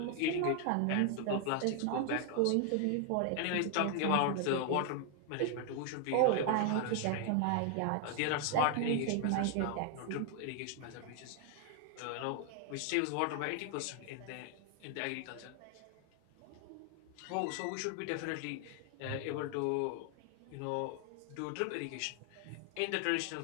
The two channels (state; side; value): different; both; correlation 0.00